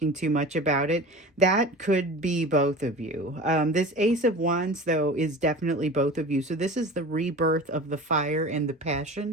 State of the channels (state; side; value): normal; both; correlation 0.36